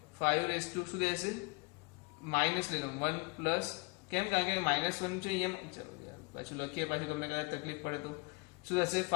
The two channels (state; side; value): quieter; right; 28.7 dB